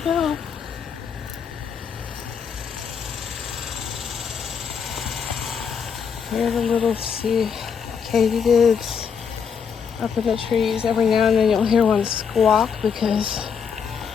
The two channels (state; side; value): quieter; right; 6.7 dB